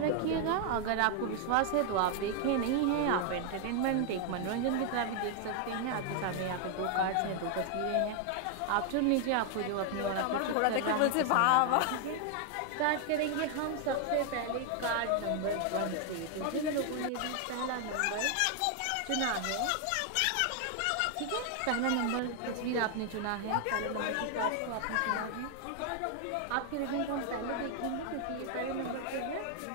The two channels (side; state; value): both; different; correlation 0.00